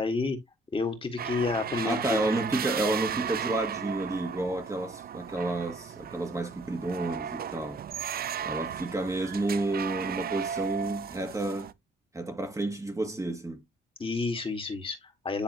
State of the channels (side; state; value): both; normal; correlation 0.62